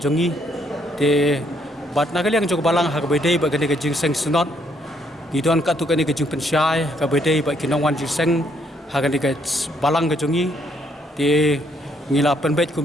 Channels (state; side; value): normal; both; correlation 0.70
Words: te bat nagaliang jog balang ha kabedei ba gane ka GSN Sinot gidon ka tu ka ni ka jing pensyai ka bedei ba kinongwan GSN ha gane ka balang ka jongi te ngila penbet